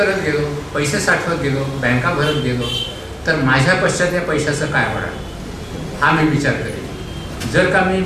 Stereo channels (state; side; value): identical; both; correlation 1.00